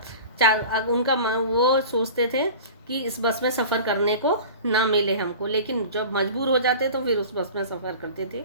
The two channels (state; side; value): inverted; both; correlation -0.38